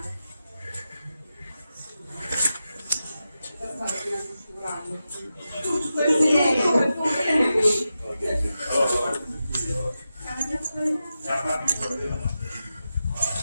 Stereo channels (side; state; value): both; inverted; correlation -0.91